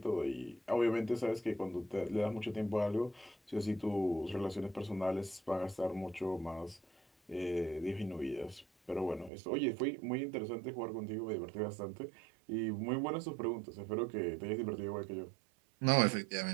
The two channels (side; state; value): left; drops out; at 9.3 s